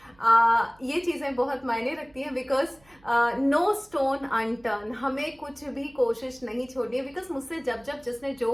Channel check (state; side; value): noise; right; hum, 30 dB below the sound